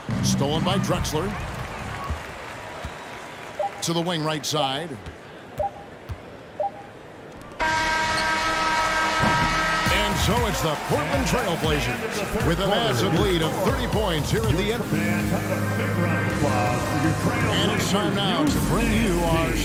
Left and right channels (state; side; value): identical; both; correlation 1.00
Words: Stolen by Drexler. To the wing right side. And so it's the Portland Trailblazers with a massive lead of 30 points here at the end. And it's time now to bring you our